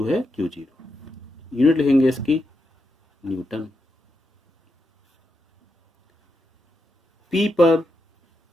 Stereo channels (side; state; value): both; normal; correlation 0.85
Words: है Q0। यूनिट लिखेंगे इसकी न्यूटन। P पर